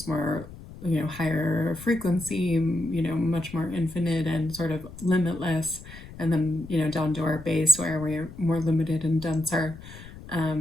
more higher frequency, much more infinite and sort of limitless, and then down to our base where we're more limited and denser,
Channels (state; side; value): noise; left; rumble, 16 dB below the sound